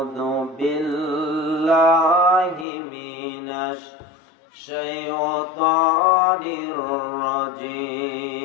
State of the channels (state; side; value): drops out; right; at 2.7 s